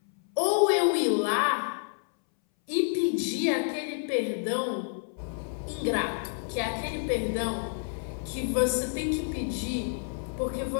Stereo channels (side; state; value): right; silent; 59 dB below the other